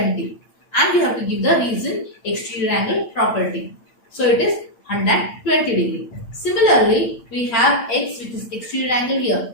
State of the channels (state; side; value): late; right; 8.8 ms